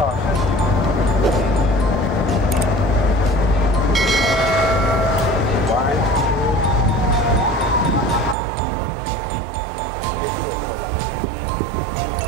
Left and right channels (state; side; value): drops out; left; at 8.3 s